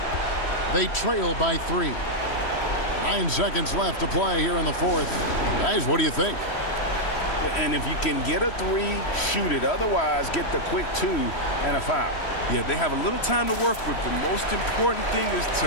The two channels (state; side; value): late; right; 3.1 ms